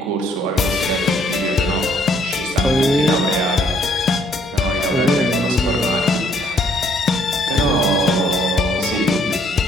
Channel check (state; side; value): normal; both; correlation 0.66